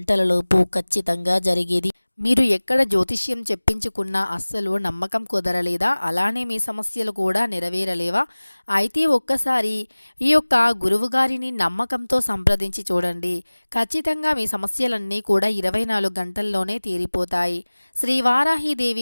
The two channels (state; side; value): inverted; both; correlation -1.00